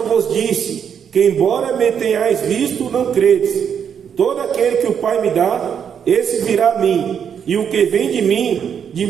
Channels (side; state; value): left; quieter; 7.8 dB